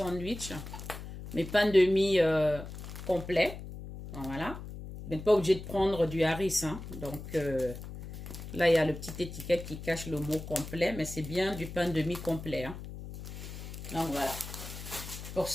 mes pains de mie complets. Voilà. Vous n'êtes pas obligé de prendre du harissa. Hein. Donc là, il y a le petit étiquette qui cache le mot complet, mais c'est bien du pain de mie complet. Hein. Donc voilà. Pour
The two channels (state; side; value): noise; left; hum, 10 dB below the sound